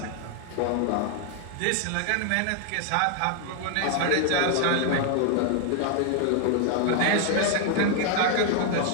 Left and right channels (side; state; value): both; different; correlation 0.00